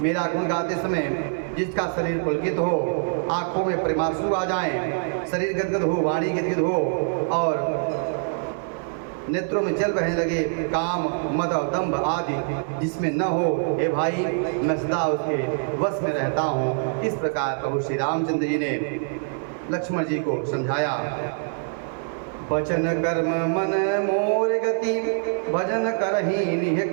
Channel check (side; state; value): left; silent; 58 dB below the other